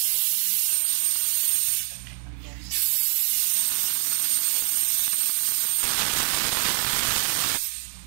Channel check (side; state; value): left; silent; digital silence